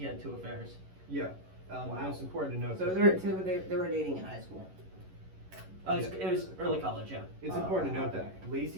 had 2 affairs. yeah. And it's important to note. So that- they were dating in high school. It was early college, yeah. It's important to note that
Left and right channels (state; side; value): late; left; 11 ms